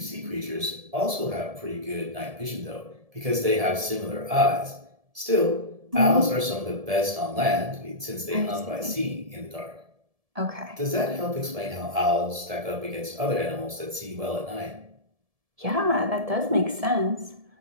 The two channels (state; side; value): late; left; 1.7 ms